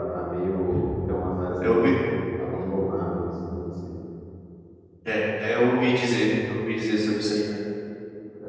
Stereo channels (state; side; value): identical; both; correlation 1.00